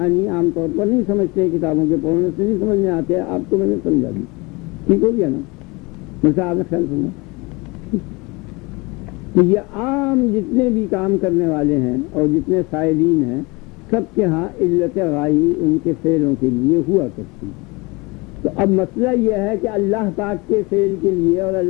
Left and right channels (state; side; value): quieter; right; 25.7 dB